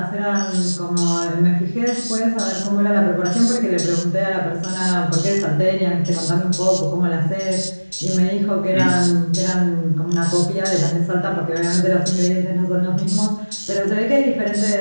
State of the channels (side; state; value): both; inverted; correlation -1.00